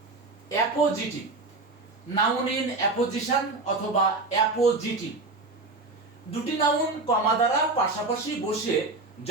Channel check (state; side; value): quieter; left; 3.3 dB